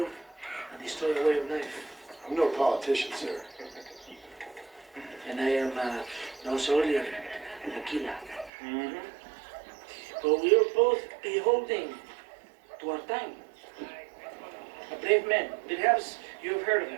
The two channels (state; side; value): drops out; left; at 8.5 s